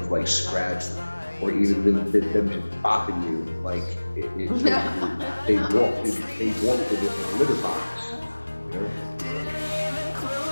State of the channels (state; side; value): inverted; both; correlation -1.00